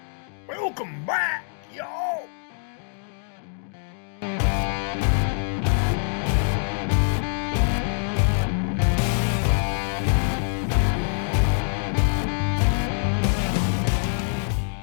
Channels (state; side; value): silent; right; digital silence